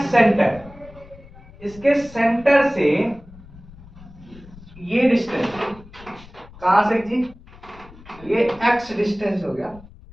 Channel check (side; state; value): left; noise; rumble, 21 dB below the sound